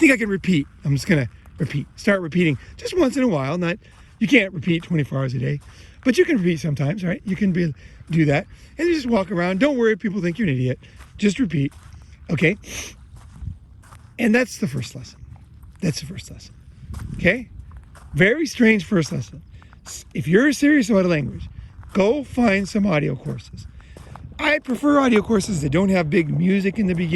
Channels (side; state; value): both; identical; correlation 1.00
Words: I can repeat. I'm just going to repeat. Start repeating just once in a while. You can't repeat 24 hours a day, but you can repeat sometimes, right? You can do that. And you just walk around. Don't worry if people think you're an idiot. Just repeat. Okay? And that's the first lesson. Okay? Very strange first lesson. If you're serious about a language, go find some audio courses. I prefer audio courses that don't have big music in the